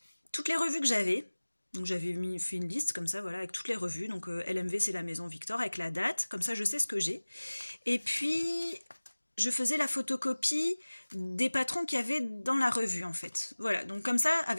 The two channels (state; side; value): inverted; both; correlation -1.00